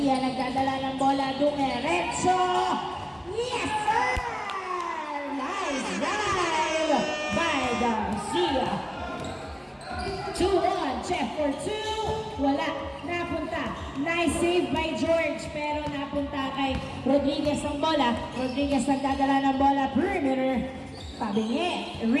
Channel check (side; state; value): both; identical; correlation 1.00